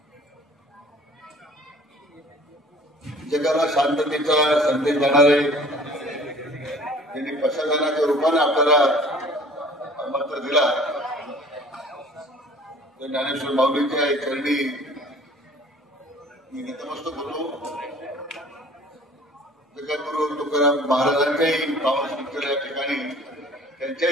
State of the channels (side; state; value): both; normal; correlation 0.50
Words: जगाला शांततेचा संदेश देणारे त्यांनी प्रशासनाच्या रूपाने आपल्याला मंत्र दिला। तर ज्ञानेश्वर माऊलींच्या चरणी मी नतमस्तक होतो। जगद्गुरु तुकाराम महाराजांच्याही पावन स्मृतीला या ठिकाणी